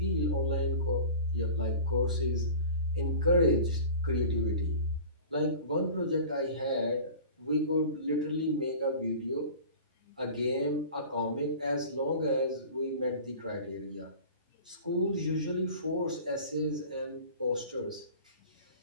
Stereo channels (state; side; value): inverted; both; correlation -0.39